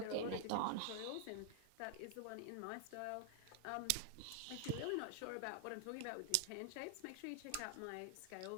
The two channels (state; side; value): different; both; correlation 0.00